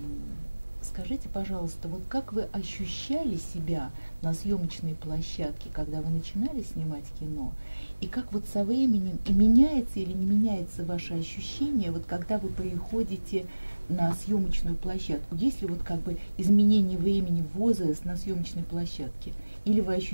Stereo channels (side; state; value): both; inverted; correlation -1.00